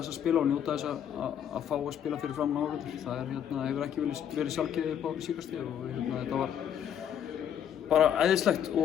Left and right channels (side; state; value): right; quieter; 9.3 dB